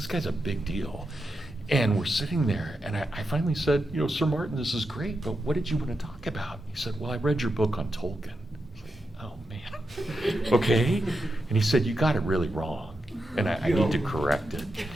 guy's a big deal. And we're sitting there, and I finally said, "Sir Martin, this is great, but what did you want to talk about?" He said, "Well, I read your book on Tolkien." Oh, man. Okay. And he said, "You got it really wrong, and I need to correct it."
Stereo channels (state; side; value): normal; both; correlation 0.87